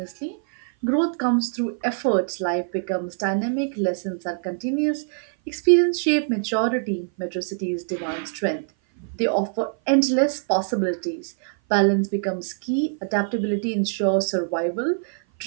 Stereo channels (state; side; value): silent; left; 57 dB below the other